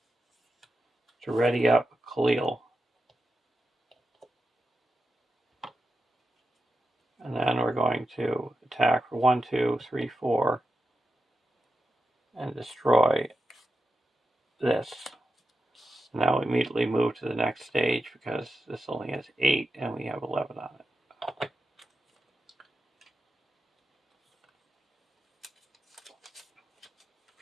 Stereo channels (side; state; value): both; normal; correlation 0.89